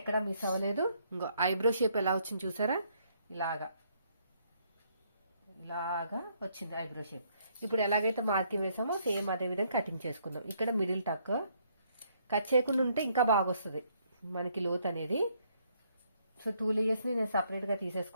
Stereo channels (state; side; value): inverted; both; correlation -0.69